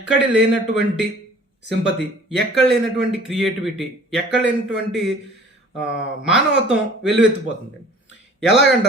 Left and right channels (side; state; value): both; normal; correlation 0.49